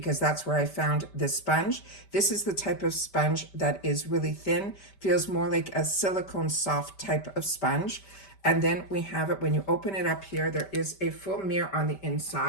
that's where I found this sponge. This is the type of sponge that is really thin, feels more like a silicone soft type of sponge. And then we have it, when you open it up here, there is a full mirror on the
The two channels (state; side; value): late; right; 5.1 ms